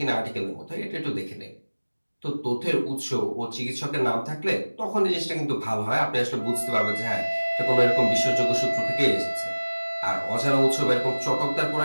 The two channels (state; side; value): inverted; both; correlation -1.00